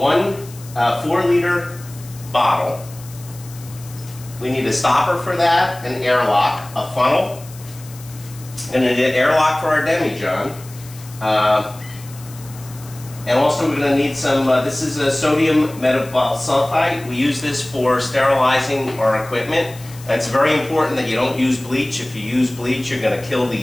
4-liter bottle. We need a stopper for that, an airlock, a funnel, and an airlock for our demijohn. And also we're going to need some, this is a sodium metabolsulfite. We use this for sterilizing our equipment. It's very important that you don't use bleach. If you use bleach, you're going to kill the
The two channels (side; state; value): left; noise; hiss, 19 dB below the sound